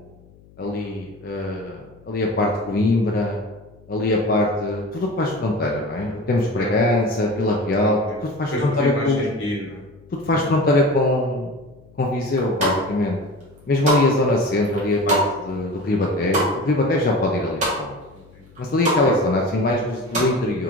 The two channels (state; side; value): noise; left; hum, 26 dB below the sound